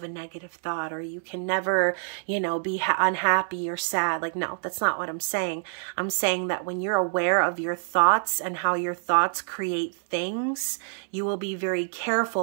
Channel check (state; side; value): silent; left; 60 dB below the other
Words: a negative thought or you can never, you know, be unhappy or sad. Like, no, that's not what I'm saying. I'm saying that when you're aware of your thoughts and how your thoughts create things, you will be very